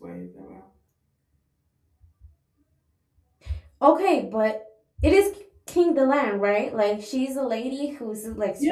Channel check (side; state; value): both; identical; correlation 1.00